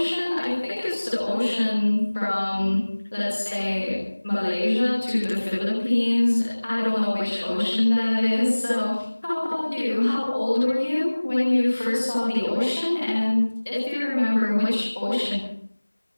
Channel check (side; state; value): both; inverted; correlation -1.00